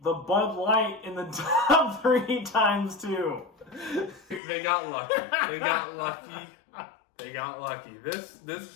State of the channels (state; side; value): drops out; right; at 4.4 s